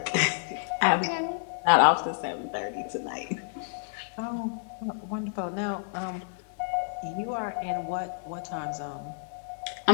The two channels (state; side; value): silent; right; digital silence